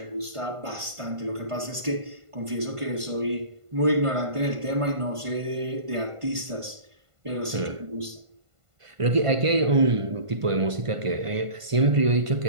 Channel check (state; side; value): late; left; 1.5 ms